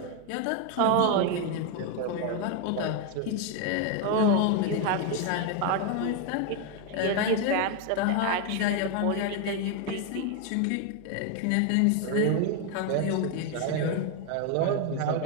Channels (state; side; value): different; both; correlation 0.01